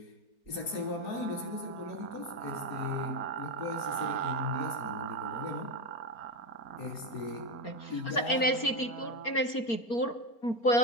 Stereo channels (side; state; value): right; late; 4.4 ms